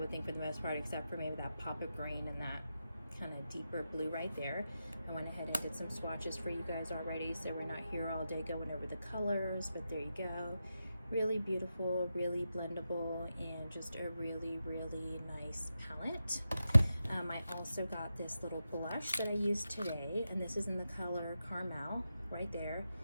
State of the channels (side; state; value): both; inverted; correlation -0.89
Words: think, for the most part, except for maybe that pop of green and that kind of deeper blue right there. I went ahead and did some swatches for you guys already, so we're not here all day going over the colors, but there you go. Really beautiful, really blendable, and just a really nice palette. I also got this little blush that I used today, and this is in the color Caramel right there.